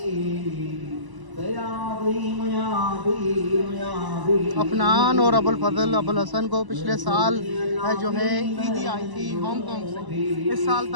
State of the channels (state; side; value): late; left; 1.0 ms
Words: अफनान और अबुल फजल अबुल हसन को पिछले साल जो है ईदी आई थी हांगकांग से, इस साल